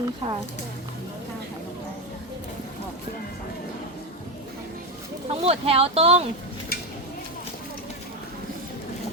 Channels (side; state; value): both; normal; correlation 0.12